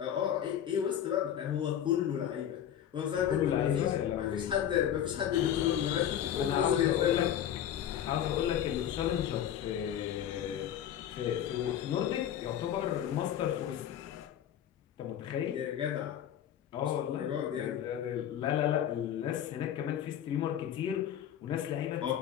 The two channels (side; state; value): right; quieter; 10.2 dB